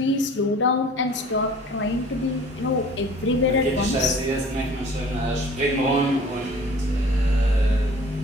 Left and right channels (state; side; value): normal; both; correlation 0.48